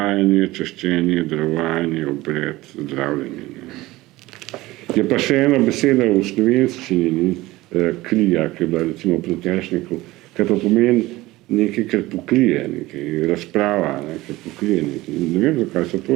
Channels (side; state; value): left; quieter; 18.8 dB